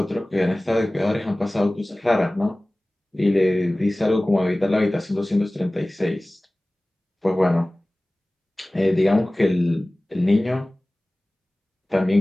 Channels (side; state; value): both; normal; correlation 0.98